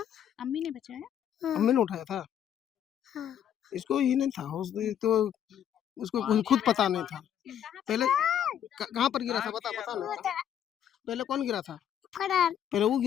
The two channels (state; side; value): quieter; right; 9.6 dB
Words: अम्मी ने बचाया? अम्मी ने उठाया था। हाँ। इसको ही नहीं था, तो उसको खुद पता नहीं था। पहले कहाँ पर गिरा था पता नहीं था। पहले कौन गिरा था? पहले वो